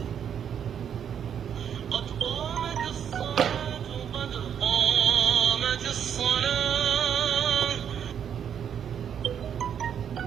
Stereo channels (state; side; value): quieter; left; 8.5 dB